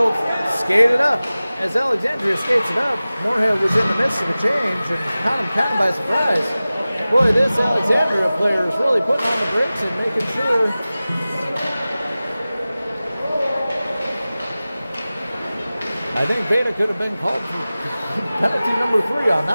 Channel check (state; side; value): inverted; both; correlation -0.97